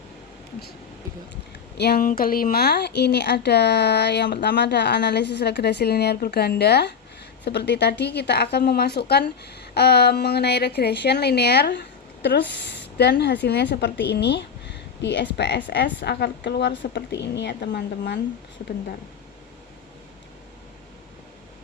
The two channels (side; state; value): right; quieter; 6.6 dB